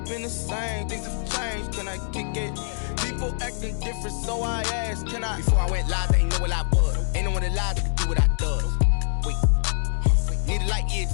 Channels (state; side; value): silent; right; 62 dB below the other